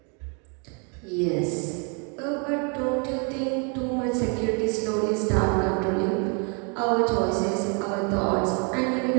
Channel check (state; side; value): quieter; left; 36.0 dB